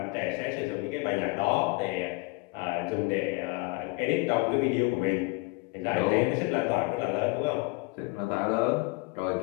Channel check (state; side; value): quieter; right; 25.9 dB